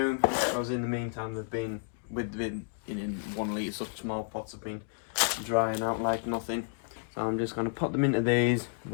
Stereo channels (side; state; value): right; silent; digital silence